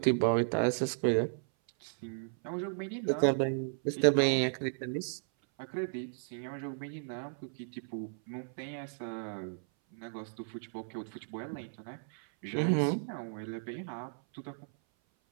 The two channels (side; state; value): left; silent; 55 dB below the other